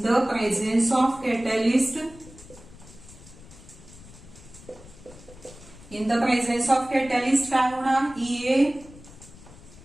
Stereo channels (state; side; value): noise; left; rumble, 20 dB below the sound